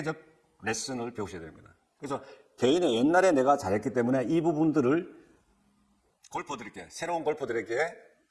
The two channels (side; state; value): both; identical; correlation 1.00